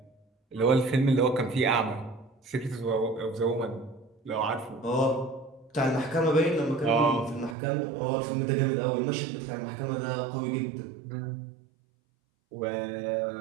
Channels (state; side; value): drops out; left; at 7.6 s